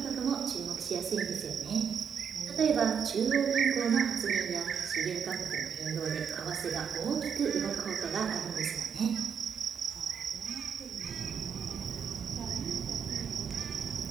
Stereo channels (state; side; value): quieter; left; 7.2 dB